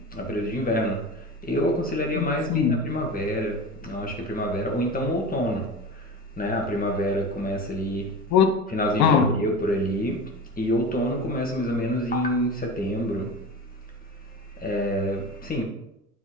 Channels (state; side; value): normal; both; correlation 0.30